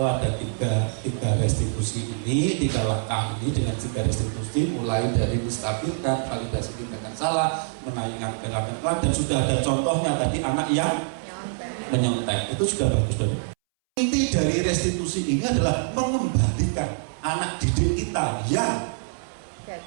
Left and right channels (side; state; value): left; silent; 62 dB below the other